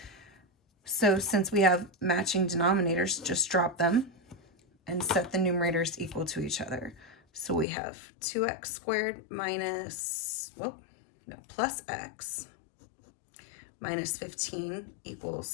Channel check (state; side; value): drops out; right; at 7.7 s